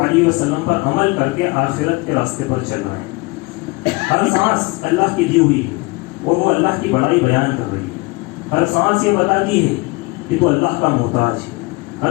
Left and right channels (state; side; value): quieter; right; 25.2 dB